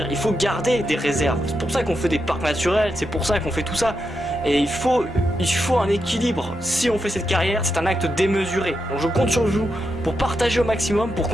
il faut garder des réserves. C'est pour ça qu'on fait des parcs naturels, c'est pour ça qu'on fait tout ça. Et il faut un équilibre. Si on fait cette carrière, c'est un acte démesuré. Donc je compte sur vous pour partager au maximum, pour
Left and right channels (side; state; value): both; normal; correlation 0.85